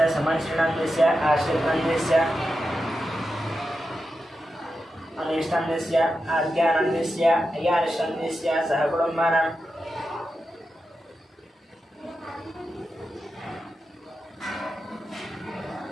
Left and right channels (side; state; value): both; normal; correlation 0.89